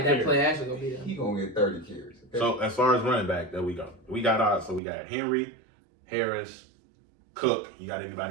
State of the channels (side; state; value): left; drops out; at 4.8 s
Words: That 25 play action gonna be there. He gonna get 30 carries. Okay? So as far as running back, there we go. We got Henry, Harris, Cook. You got